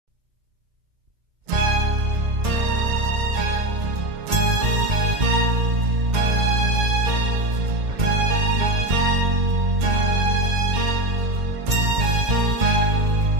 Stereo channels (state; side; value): late; left; 2.1 ms